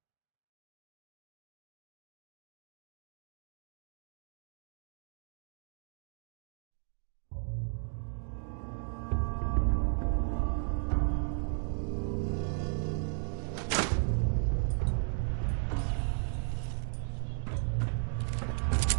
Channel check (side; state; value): left; silent; 54 dB below the other